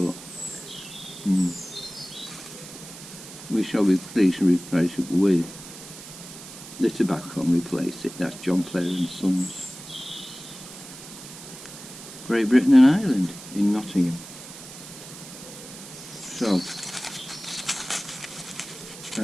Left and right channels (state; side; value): noise; right; hiss, 14 dB below the sound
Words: We shall be pleased to replace it with the tobacco and replace it. That's John Player and Sons, Great Britain and Ireland, in Nottingham. So,